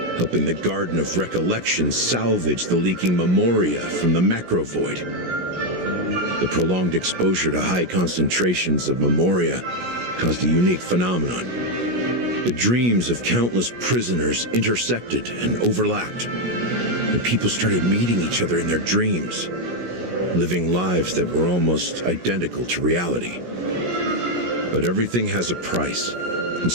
helping the Garden of Recollection salvage the leaking memoria from the macrovoid. The prolonged exposure to high concentrations of memoria caused a unique phenomenon. The dreams of countless prisoners intersected and overlapped, and people started meeting each other in their dreams, living lives that were almost identical to reality. But everything has a price, and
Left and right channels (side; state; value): left; late; 17 ms